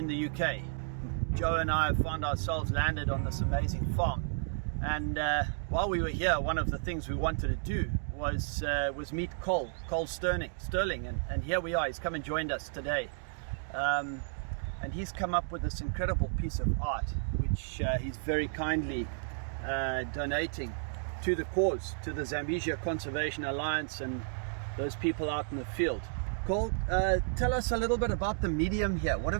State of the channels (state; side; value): silent; left; digital silence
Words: the UK. Joe and I found ourselves landed on this amazing farm, and while we were here, one of the things we wanted to do was meet Cole Stirling, and here we are. He's come and joined us today, and he's come up with this incredible piece of art, which he's very kindly donating to the cause, to the Zambesia Conservation Alliance and those people out in the field. Cole, tell us a little bit about the medium here. What